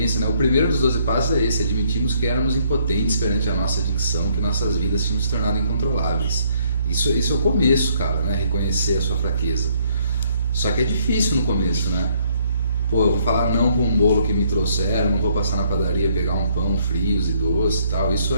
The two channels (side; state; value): both; inverted; correlation -0.67